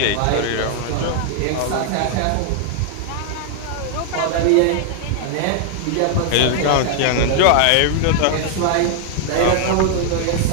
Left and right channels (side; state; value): both; different; correlation 0.00